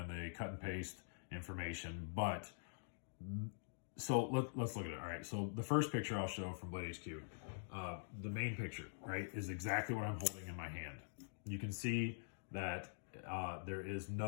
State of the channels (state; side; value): silent; right; digital silence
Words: They cut and paste information, but so let's look at it. All right, so the first picture I'll show from Blade HQ, the main picture, right, is exactly what I'm holding in my hand. You can see that there are